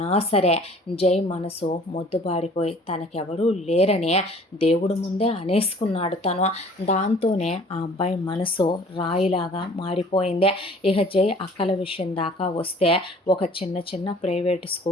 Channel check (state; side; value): normal; both; correlation 0.51